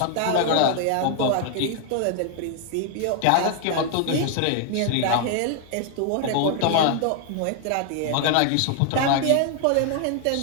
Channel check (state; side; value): different; both; correlation 0.00